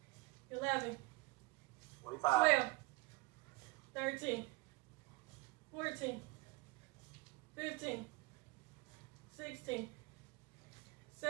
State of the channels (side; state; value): left; quieter; 22.3 dB